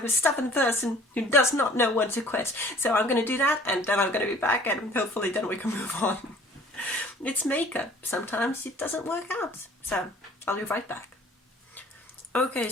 a stubborn person who does not know when to quit. So I'm going to do that, and then I'm going to be back, and hopefully then we can move on. It's makeup. Sometimes it doesn't work out. So I'll be right back. Okay,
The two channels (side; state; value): both; normal; correlation 0.51